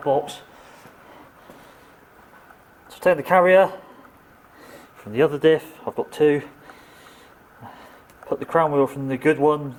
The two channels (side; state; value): both; identical; correlation 1.00